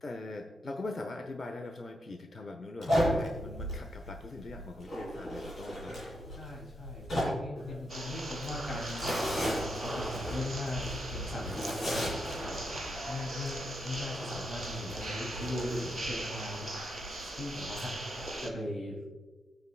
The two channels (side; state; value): both; normal; correlation 0.81